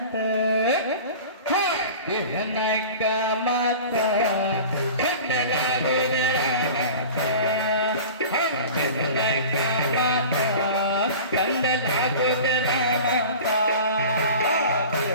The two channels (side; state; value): both; inverted; correlation -0.38